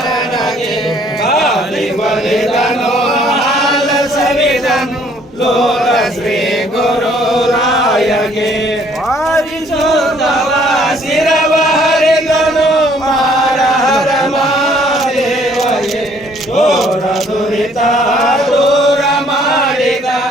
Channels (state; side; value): normal; both; correlation 0.62